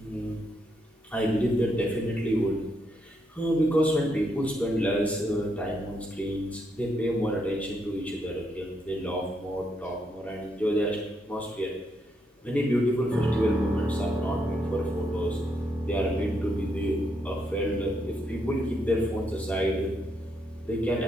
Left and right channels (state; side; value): normal; both; correlation 0.78